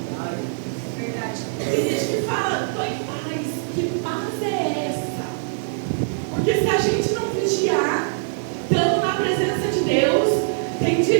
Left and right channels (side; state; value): left; silent; 64 dB below the other